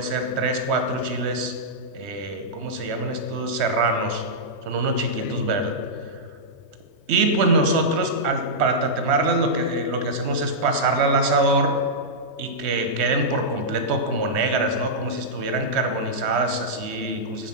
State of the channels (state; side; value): late; left; 3.2 ms